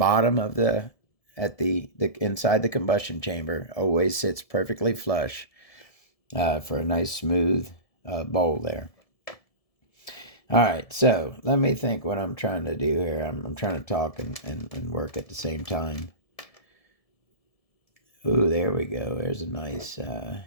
of the inside the combustion chamber. Always sits perfectly flush for a nice smooth bowl there. All right, so let me think what I'm trying to do here. I'm trying to talk and work at the same time. Ooh, there we go. There's a nice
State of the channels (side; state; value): right; late; 1.7 ms